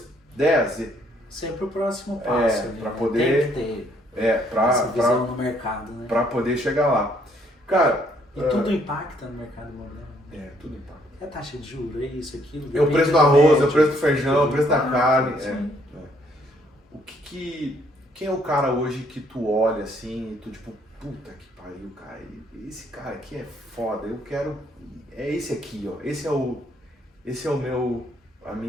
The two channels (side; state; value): both; normal; correlation 0.67